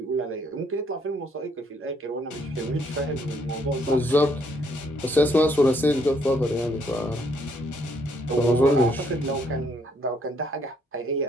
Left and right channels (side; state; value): both; normal; correlation 0.69